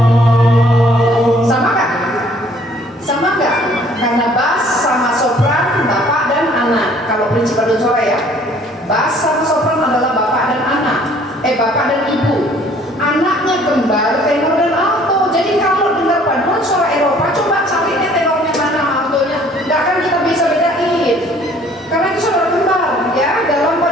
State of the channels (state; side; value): normal; both; correlation 0.57